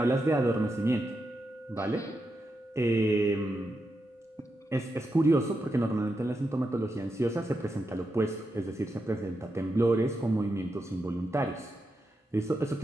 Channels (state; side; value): normal; both; correlation 0.86